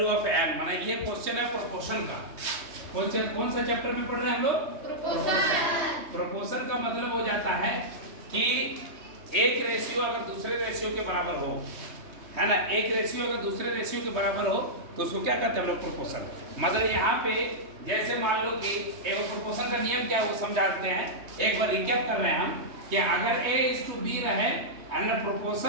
of n माना ये question है प्रोपोर्शन का। क्वेश्चन कौन सा चैप्टर में पढ़ रहे हैं हम लोग? प्रोपोर्शन। प्रोपोर्शन का मतलब हो जाता है कि एक रेशियो अगर दूसरे रेशियो के बराबर हो, है ना, एक रेशियो अगर दूसरे रेशियो के बराबर हो तो उसको क्या कहते हैं हम लोग? प्रोपोर्शन। मतलब यहाँ पे जैसे मान लो कि एक प्रोपोर्शन का नियम क्या है वो समझाते हैं। एक बार रिकैप कर रहे हैं हम कि अगर A:B रहे एंड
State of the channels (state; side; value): late; left; 3.2 ms